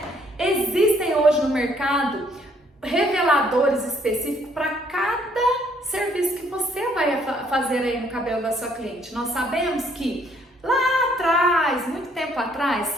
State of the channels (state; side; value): normal; both; correlation 0.66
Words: Existem hoje no mercado reveladores específicos para cada serviço que você vai fazer aí no cabelo da sua cliente. Nós sabemos que lá atrás, muito tempo atrás,